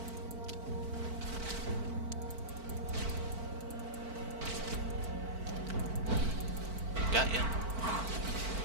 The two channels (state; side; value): late; left; 4.5 ms